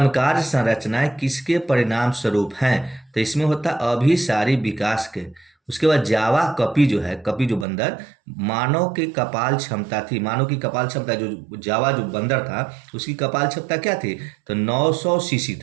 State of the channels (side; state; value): left; drops out; at 7.7 s